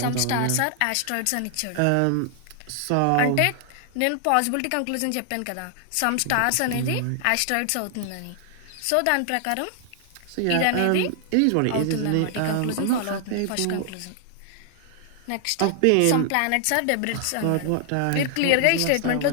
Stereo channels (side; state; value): both; different; correlation 0.00